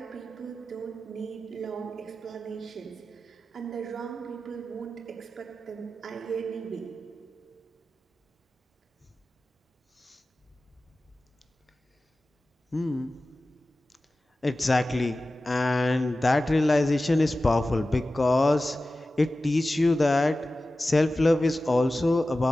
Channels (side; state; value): both; normal; correlation 0.95